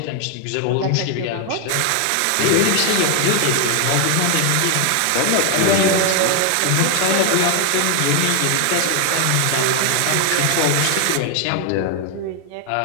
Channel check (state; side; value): different; both; correlation 0.00